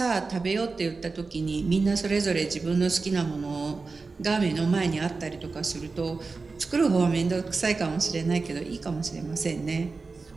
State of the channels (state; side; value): quieter; left; 4.1 dB